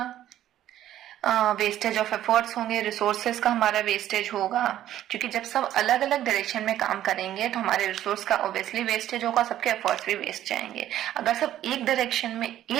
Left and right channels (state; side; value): quieter; left; 12.4 dB